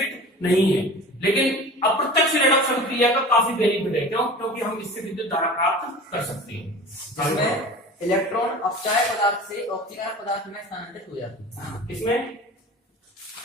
नहीं है, लेकिन अप्रत्यक्ष रेडॉक्स अभिक्रिया का काफी बेनिफिट है। क्यों? क्योंकि हम इससे विद्युत धारा प्राप्त कर सकते हैं। जिसमें इलेक्ट्रॉन अपचायक पदार्थ से ऑक्सीकरण पदार्थ में स्थानांतरित हो जाते हैं। किसमें?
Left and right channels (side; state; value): both; normal; correlation 0.38